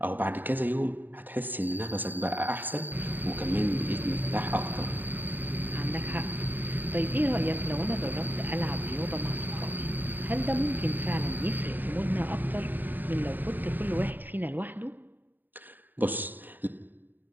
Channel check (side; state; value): left; late; 0.090 ms